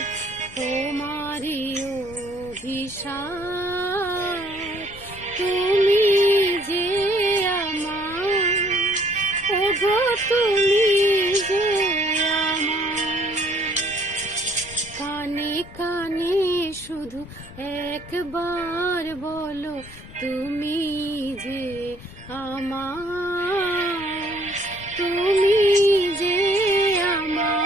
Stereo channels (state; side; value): noise; left; rumble, 19 dB below the sound